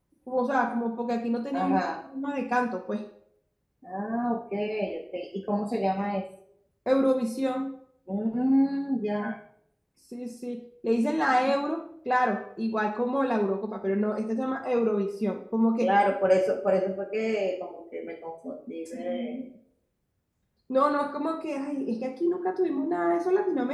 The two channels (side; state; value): both; identical; correlation 1.00